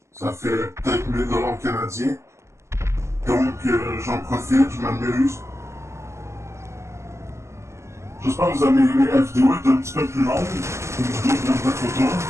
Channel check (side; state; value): left; late; 0.13 ms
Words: Ça fait peut-être 1000$ canadiens. Donc, j'en profite, je m'amuse. J'espère que vous avez aimé la vidéo, elle est un petit peu plus longue, une vidéo de 24 photos,